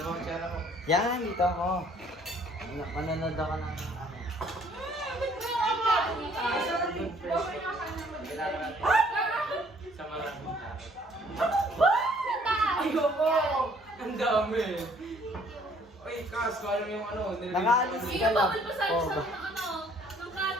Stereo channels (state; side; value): normal; both; correlation 0.60